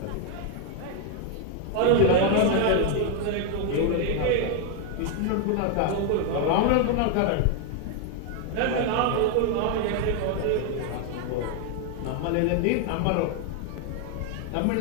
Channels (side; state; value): both; different; correlation 0.00